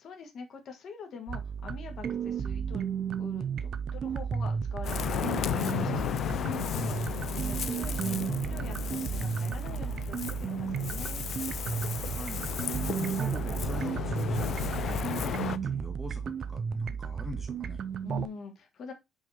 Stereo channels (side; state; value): both; normal; correlation 0.63